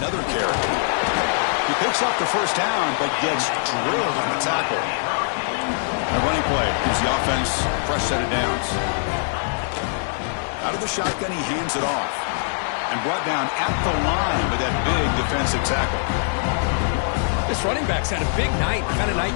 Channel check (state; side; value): silent; right; digital silence